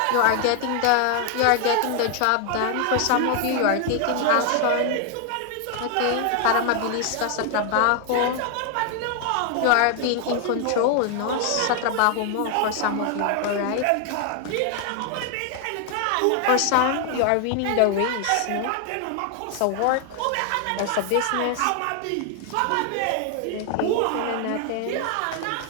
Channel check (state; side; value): different; both; correlation 0.00